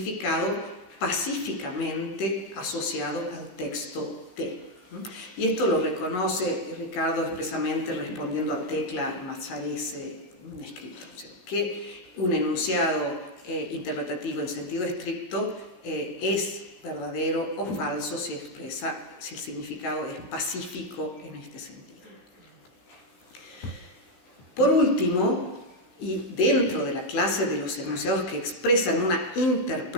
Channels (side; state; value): right; late; 15 ms